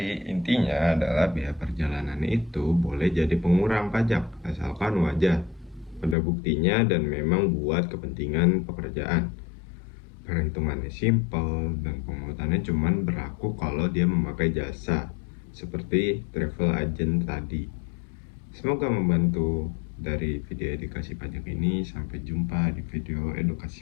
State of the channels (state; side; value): drops out; right; at 6.2 s